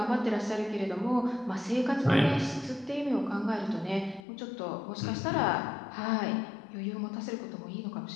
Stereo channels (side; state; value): right; drops out; at 4.2 s